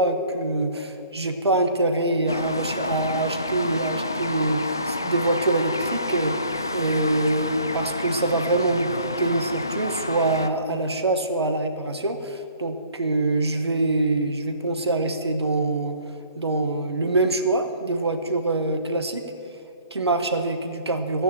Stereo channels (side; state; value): both; inverted; correlation -0.57